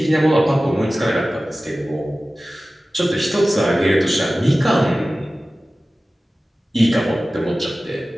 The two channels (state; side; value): normal; both; correlation 0.96